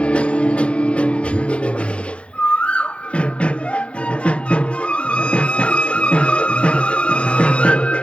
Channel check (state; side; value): late; right; 0.060 ms